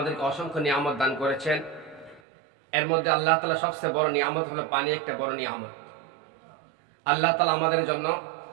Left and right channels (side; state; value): left; drops out; at 2.2 s